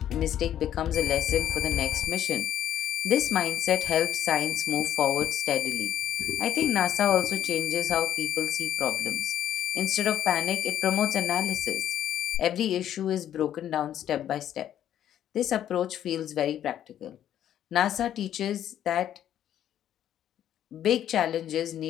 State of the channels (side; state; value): right; quieter; 10.8 dB